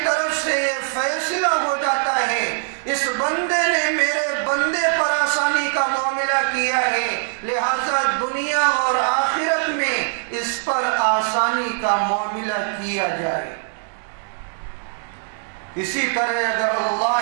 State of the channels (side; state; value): left; silent; digital silence